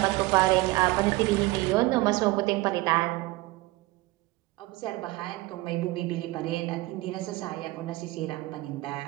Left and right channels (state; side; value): quieter; left; 20.0 dB